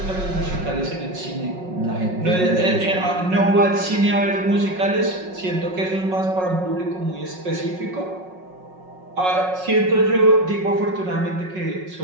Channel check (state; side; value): late; left; 5.4 ms